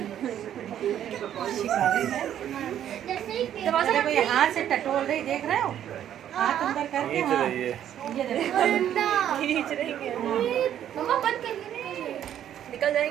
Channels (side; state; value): left; quieter; 10.5 dB